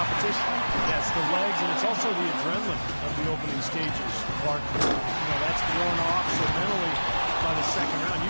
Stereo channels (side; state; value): both; inverted; correlation -1.00